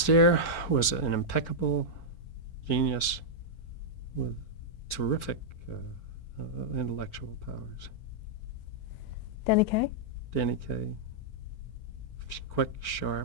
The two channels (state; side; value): late; right; 4.4 ms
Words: was an impeccable genius with terrific intellectual powers. Danny Kaye. Danny Kaye, quick,